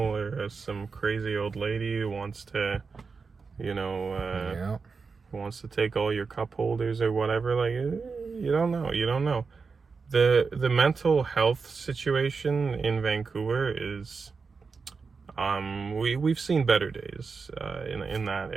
or some crazy old lady who wants to, Yeah. wants to take all your cup holders or whatever. Like, you don't know. The mental health situation in Vancouver is, we've seen better days in that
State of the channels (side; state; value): left; quieter; 4.9 dB